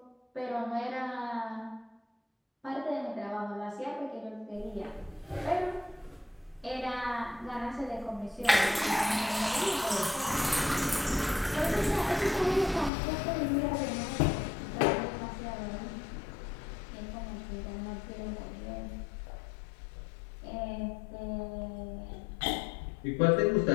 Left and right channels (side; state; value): right; drops out; at 12.9 s